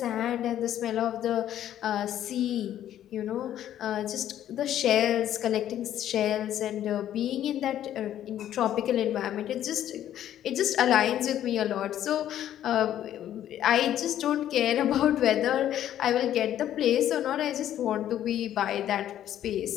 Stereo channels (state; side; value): quieter; right; 11.4 dB